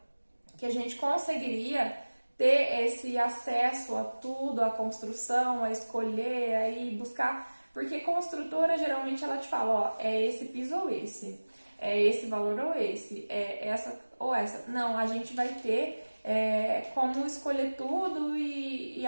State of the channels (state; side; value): inverted; both; correlation -1.00